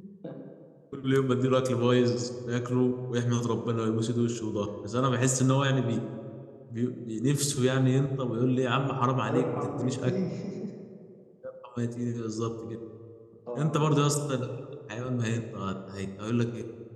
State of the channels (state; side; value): identical; both; correlation 1.00